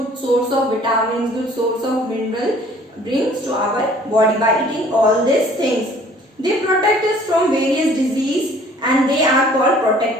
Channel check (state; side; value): normal; both; correlation 0.54